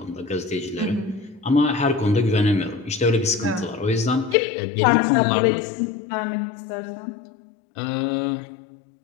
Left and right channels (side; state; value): right; drops out; at 4.4 s